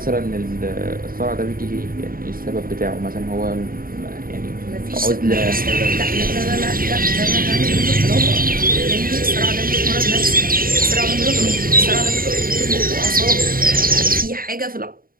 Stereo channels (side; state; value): left; late; 0.42 ms